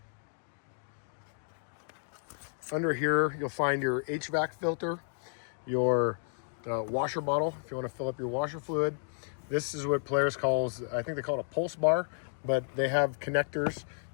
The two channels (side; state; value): right; silent; digital silence